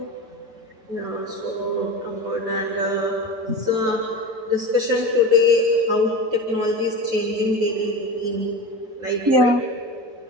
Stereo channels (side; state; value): left; late; 6.4 ms